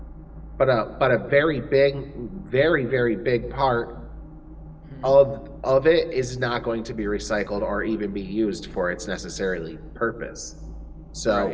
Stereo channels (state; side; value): identical; both; correlation 1.00